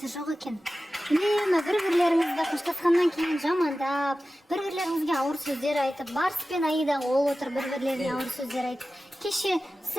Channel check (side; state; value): both; normal; correlation 0.95